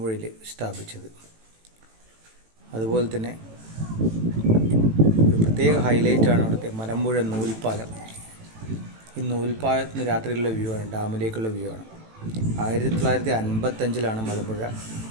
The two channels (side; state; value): left; late; 18 ms